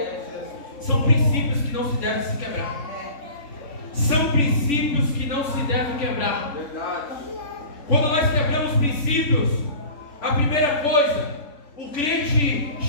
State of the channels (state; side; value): late; right; 3.5 ms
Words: São princípios que não se devem se quebrar. São princípios que não se devem quebrar. Quando nós quebramos princípios, a primeira coisa, o crente